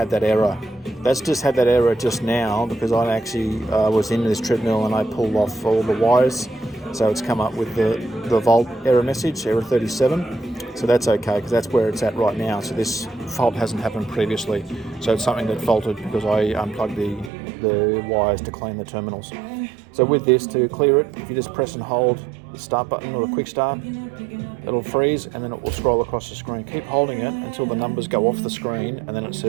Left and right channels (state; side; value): drops out; left; at 17.3 s